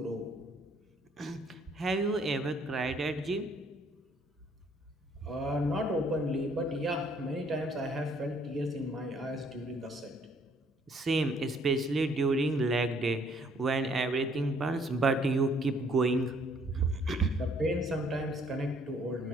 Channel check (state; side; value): normal; both; correlation 0.64